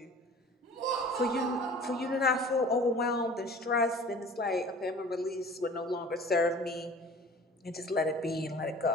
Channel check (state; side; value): normal; both; correlation 0.44